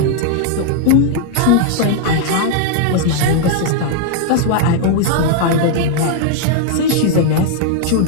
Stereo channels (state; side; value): different; both; correlation 0.00